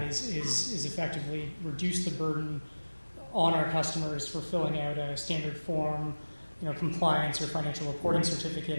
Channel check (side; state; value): both; inverted; correlation -1.00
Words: is effectively reduce the burden on our customers for filling out a standard form, compliance or financial reporting certificate